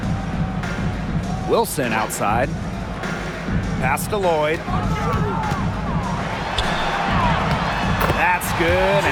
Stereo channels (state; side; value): identical; both; correlation 1.00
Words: Wilson outside. Pass to Lloyd. That's good,